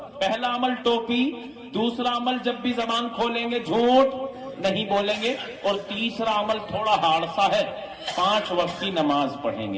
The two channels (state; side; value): identical; both; correlation 1.00